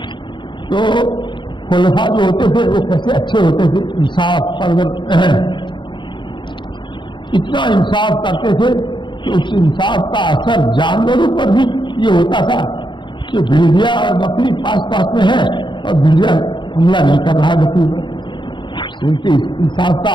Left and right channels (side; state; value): right; late; 0.23 ms